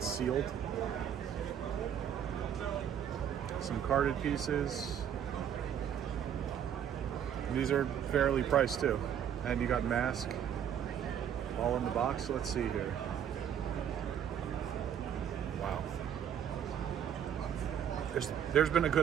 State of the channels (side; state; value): left; quieter; 9.1 dB